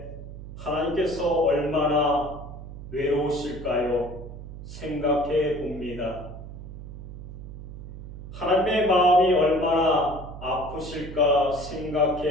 하나님께서 얼마나 외로우실까요? 생각해 봅니다. 하나님의 마음이 얼마나 아프실까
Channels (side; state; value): right; noise; hum, 12 dB below the sound